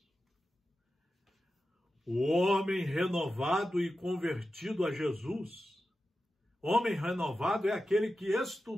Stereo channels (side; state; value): both; normal; correlation 0.92